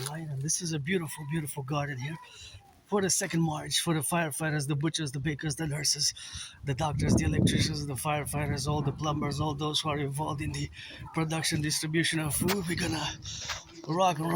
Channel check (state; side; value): identical; both; correlation 1.00